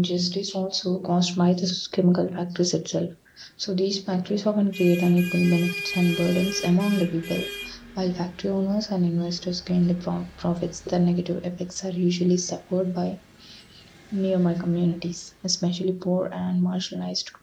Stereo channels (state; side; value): identical; both; correlation 1.00